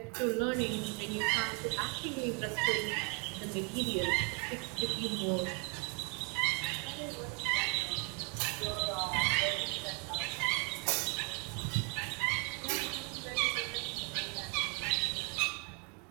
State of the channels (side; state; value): left; quieter; 32.4 dB